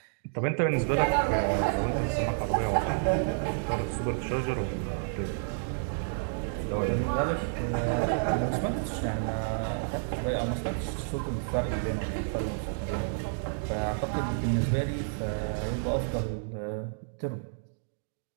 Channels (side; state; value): left; silent; digital silence